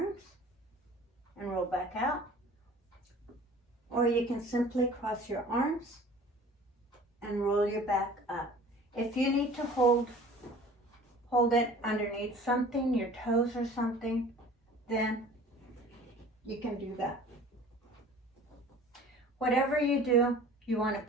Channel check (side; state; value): both; normal; correlation 0.46